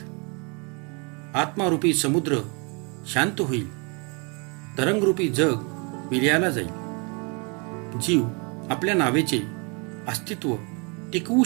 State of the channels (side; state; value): left; quieter; 32.8 dB